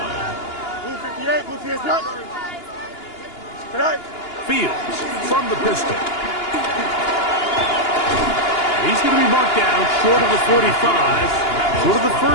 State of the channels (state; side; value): late; right; 2.9 ms